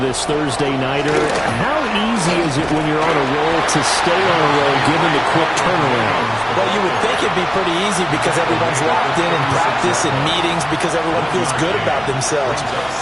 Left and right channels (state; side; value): noise; right; hum, 21 dB below the sound